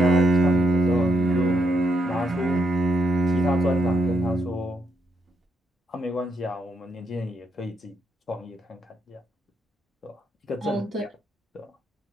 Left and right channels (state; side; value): normal; both; correlation 0.78